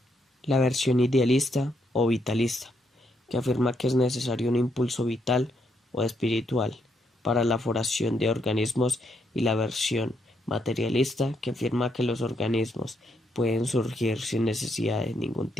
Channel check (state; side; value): normal; both; correlation 0.76